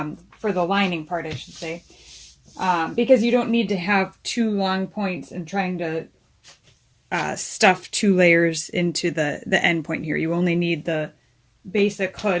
the lining part, I should say, because you don't need to have 2 long points and trying to stuff 2 layers into the end point here. You only need the basic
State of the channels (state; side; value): identical; both; correlation 1.00